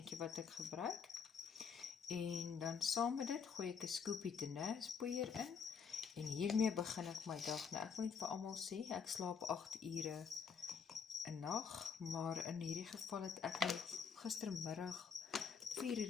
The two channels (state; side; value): quieter; right; 6.3 dB